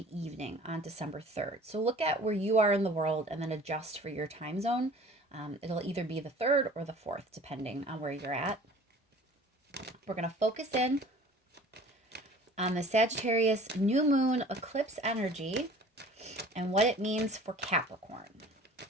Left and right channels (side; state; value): both; normal; correlation 0.47